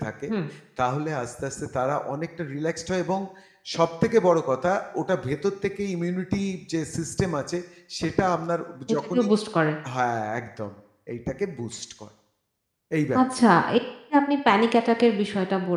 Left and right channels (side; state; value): both; identical; correlation 1.00